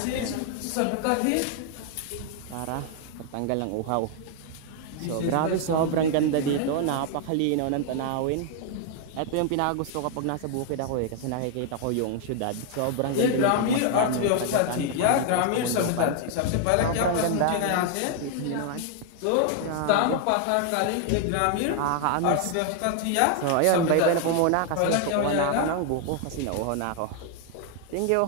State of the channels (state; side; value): different; both; correlation 0.00